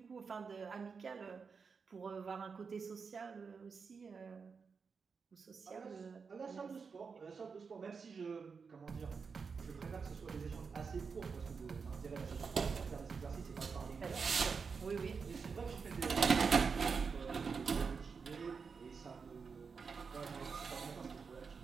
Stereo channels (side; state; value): left; quieter; 5.4 dB